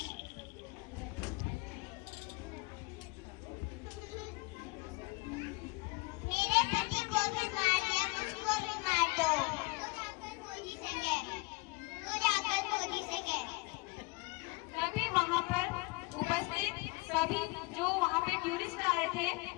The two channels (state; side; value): quieter; right; 26.6 dB